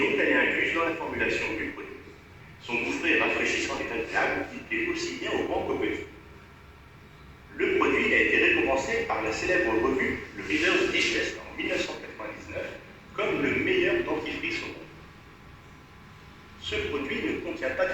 donc elle est incluse dans la formulation du produit. Son goût frais et rafraîchissant est agréable, il plaît aussi bien aux grands qu'aux petits. Le produit a été récompensé par la célèbre revue Le Reader's Digest en 1999 comme le meilleur dentifrice au monde. Ce produit ne contient pas de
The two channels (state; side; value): identical; both; correlation 1.00